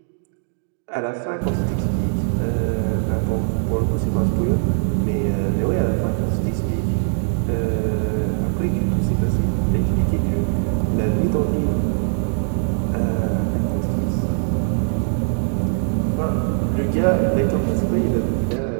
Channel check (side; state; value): left; silent; digital silence